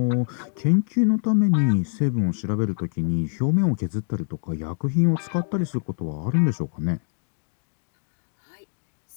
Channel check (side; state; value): right; silent; digital silence